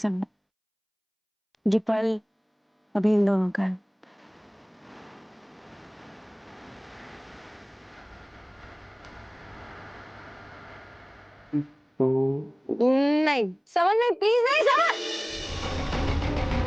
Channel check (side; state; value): both; identical; correlation 1.00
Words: ये पल अभी इन दोनों का है। नहीं समझ में, प्लीज नहीं समझ।